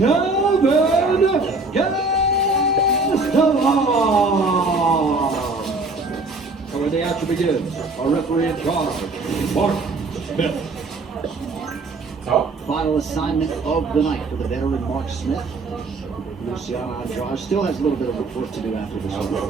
Gastelum. And when the action begins, our referee in charge, Mark Smith. Final assignment of the night for the veteran Mark Smith. Luciano Andrade still has a little bit of work to do after this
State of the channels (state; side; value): quieter; left; 3.4 dB